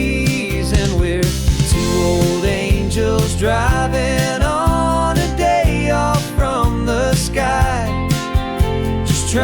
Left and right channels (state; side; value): identical; both; correlation 1.00